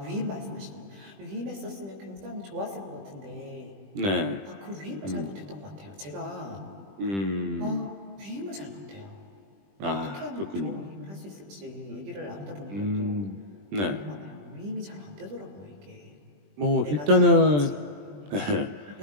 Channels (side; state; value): left; late; 20 ms